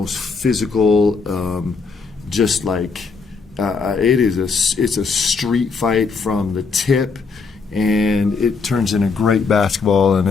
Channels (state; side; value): quieter; right; 4.8 dB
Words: physical, it's a street fight from the tip. And it turns into great basketball, and